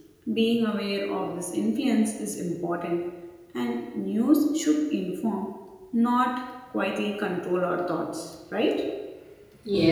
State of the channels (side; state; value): both; identical; correlation 1.00